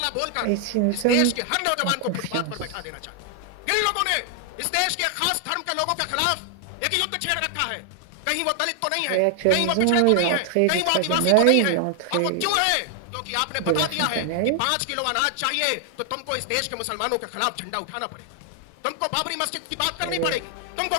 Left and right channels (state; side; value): different; both; correlation 0.00